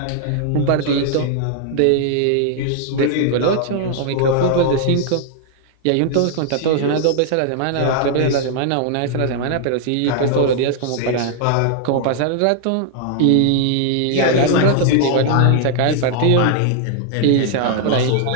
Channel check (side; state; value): both; different; correlation 0.00